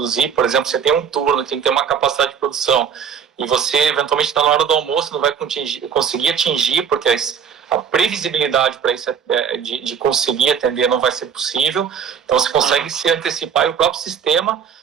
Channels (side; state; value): left; quieter; 7.3 dB